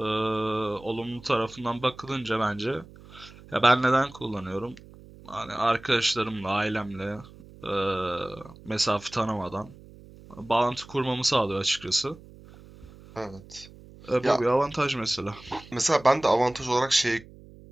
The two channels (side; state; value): right; noise; hum, 20 dB below the sound